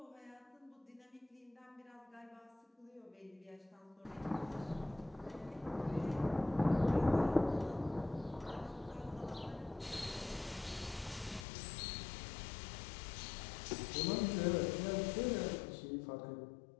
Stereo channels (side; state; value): right; drops out; at 11.5 s